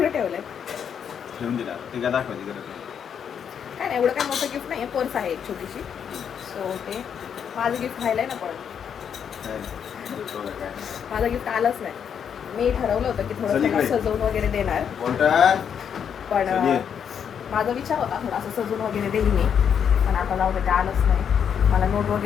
ठेवलं आहे ठेवून दिला. ते काय दाखवायची गरज नाही. काय नाही एवढं काय मोठं गिफ्ट नाही आहे. पर्स आहे एक छोटीशी. सो ते माझं गिफ्ट व्हायला आहे ना. पण काय नाही. माझं गिफ्ट आलंच नाही. मी ठरवलं होतं की थोडं त्याला सजवून वगैरे देणार, पण माझा विचार होता थोडा असं सजवून वगैरे देईल मी. पण आता जाऊ दे, ते आलंच नाही. मला नोट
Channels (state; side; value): quieter; right; 7.8 dB